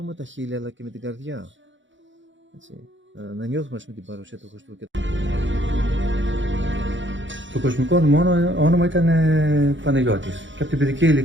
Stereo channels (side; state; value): left; late; 0.55 ms